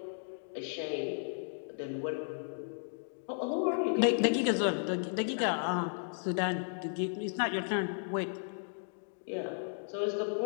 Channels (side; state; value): right; silent; digital silence